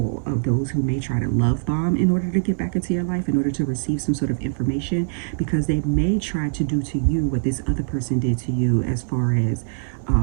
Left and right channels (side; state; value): left; silent; 60 dB below the other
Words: of those who may try to love bomb in order to get back into your life, in order to receive some sort of information, because they may try to do to you what this other person did to you, as far as